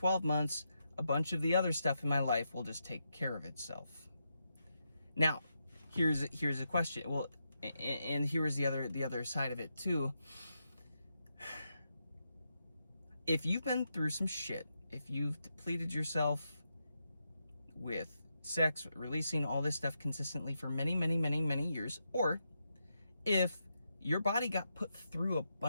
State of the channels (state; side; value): inverted; both; correlation -0.84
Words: months, a bunch of the other stuff in my life will just take care of itself. Now, here's a question. Well, and here's the other side of it too. If you've been through some shit, if you've depleted yourself with sex, releasing all this stuff consistently for many years, or if your body got put through a